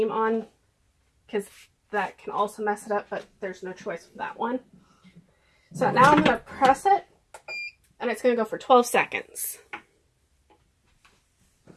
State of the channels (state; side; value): identical; both; correlation 1.00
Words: on, because that can also mess it up, but there's no choice with that one. So now I'm going to press it, and it's going to go for 12 seconds.